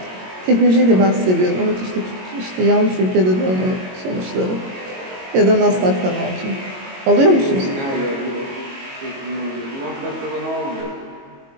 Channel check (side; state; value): left; late; 22 ms